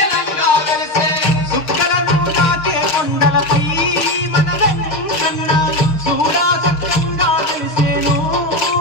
సుక్కలను దాకే కొండలపై మన వెంకన్న చూడా సత్యంగా వెలిసేను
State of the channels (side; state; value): right; late; 6.6 ms